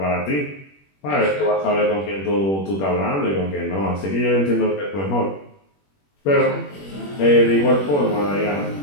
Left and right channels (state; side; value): late; right; 21 ms